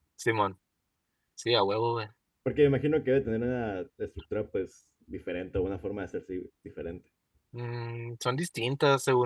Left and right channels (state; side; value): identical; both; correlation 1.00